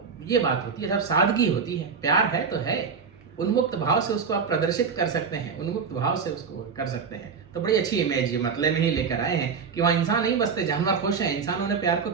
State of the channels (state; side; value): quieter; left; 5.8 dB